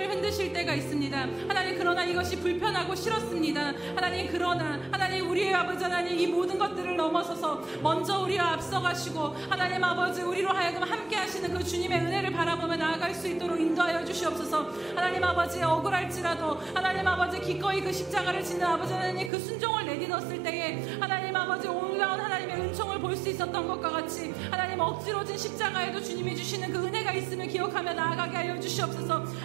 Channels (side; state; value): left; drops out; at 19.3 s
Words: 흔드실 때가 있습니다. 하나님, 그러나 이것이 불편하고 싫었습니다. 하나님, 그러나 하나님 우리의 아버지 하나님 이 모든 것들을 넘어서서 먼저 우리와 앞서가시고 하나님 아버지 우리로 하여금 함께 하시는 그 주님의 은혜를 바라보며 나아갈 수 있도록 인도하여 주시옵소서. 하나님 아버지, 억울할지라도 하나님 아버지 기꺼이 그 십자가를 지는 아버지 하나님 그 순종을 내딛었을 때에 하나님 아버지 올라온 하나님의 은총을 볼 수 있었던 것과 같이 하나님 억지로 진 십자가에도 주님이 주시는 그 은혜가 있음을 기억하며 나아가게 하여 주시옵소서.